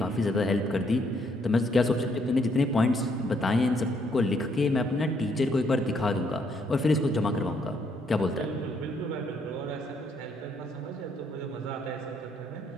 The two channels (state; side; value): normal; both; correlation 0.70